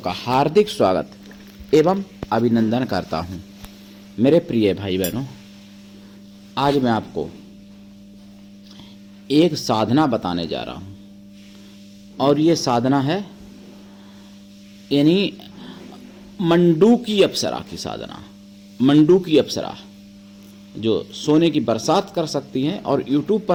हार्दिक स्वागत एवं अभिनंदन करता हूं। मेरे प्रिय भाई बहनों, आज मैं आपको एक साधना बताने जा रहा हूं और ये साधना है यानी मंडूकी अप्सरा की साधना। मंडूकी अप्सरा जो सोने की बरसात कर सकती हैं और YouTube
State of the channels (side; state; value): both; identical; correlation 1.00